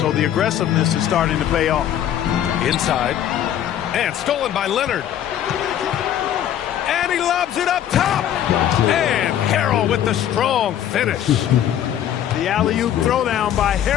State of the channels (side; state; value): right; quieter; 10.7 dB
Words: the aggressiveness is starting to pay off. Inside. And stolen by Leonard. And he lobs it up top. And Harrell with the strong finish. The alley-oop throwdown by